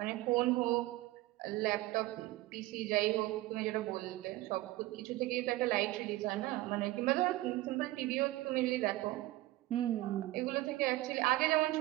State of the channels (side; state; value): left; quieter; 17.9 dB